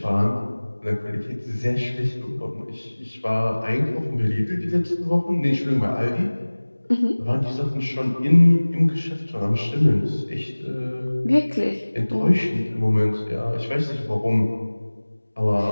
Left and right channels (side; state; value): both; inverted; correlation -1.00